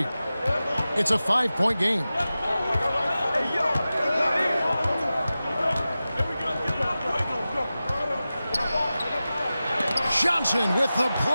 It's a 5-point game. Johnson with the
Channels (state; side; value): inverted; both; correlation -0.95